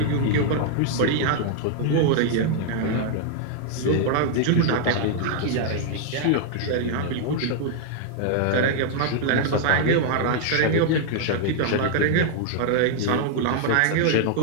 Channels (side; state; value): both; different; correlation 0.00